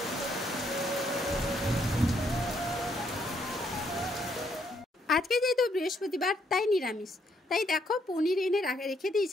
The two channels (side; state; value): both; normal; correlation 0.72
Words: আজকে যেহেতু বৃহস্পতিবার তাই নিরামিষ, তাই দেখো পনির এনে রেখে